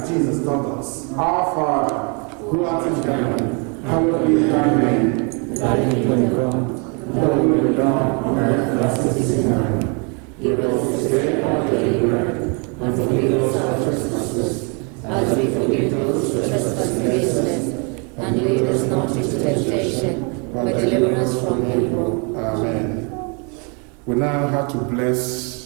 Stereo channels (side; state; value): left; quieter; 34.8 dB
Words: Jesus taught us. Our Father, who art in heaven, hallowed be thy name. Thy kingdom come, thy will be done on earth as it is in heaven. Give us this day our daily bread, and forgive us our trespasses, as we forgive those who trespass against us. And lead us not into temptation, but deliver us from evil. Amen. We now have to